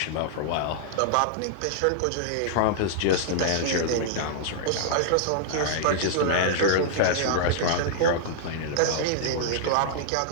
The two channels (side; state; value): both; different; correlation -0.01